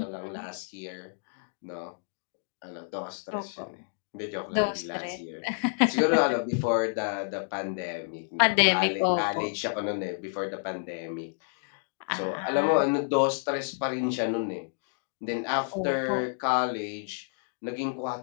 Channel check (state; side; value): silent; right; digital silence